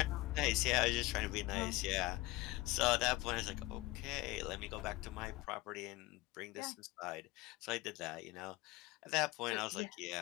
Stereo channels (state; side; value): quieter; right; 19.8 dB